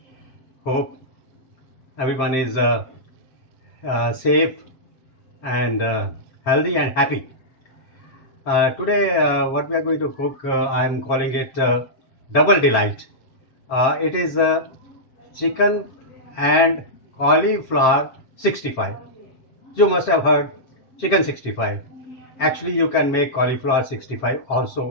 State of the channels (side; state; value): right; late; 7.7 ms